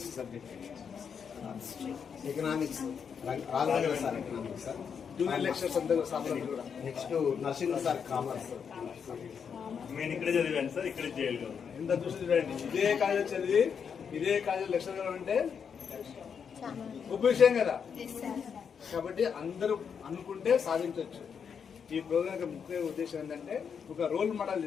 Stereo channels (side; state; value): right; quieter; 6.9 dB